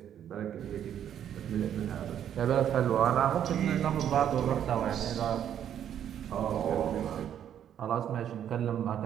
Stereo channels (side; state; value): left; quieter; 9.8 dB